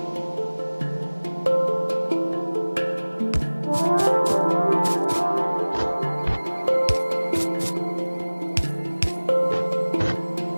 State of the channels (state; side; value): inverted; both; correlation -1.00